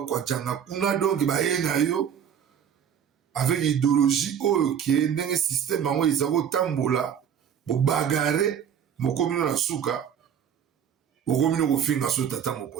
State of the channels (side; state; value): left; quieter; 8.4 dB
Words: kuna donc bayenga yo avec idéologie oyo ke ndenge système yango eza kotambola bobagare mokomino na suka okomino kofinga so tata